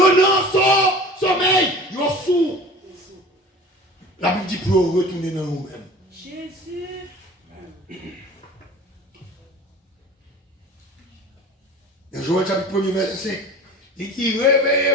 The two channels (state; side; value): normal; both; correlation 0.40